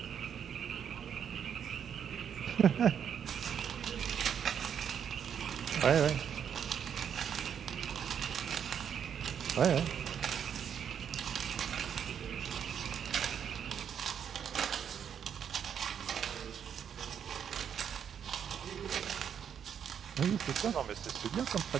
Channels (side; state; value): left; quieter; 8.2 dB